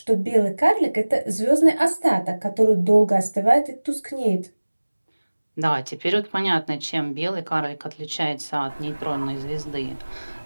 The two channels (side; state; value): both; inverted; correlation -1.00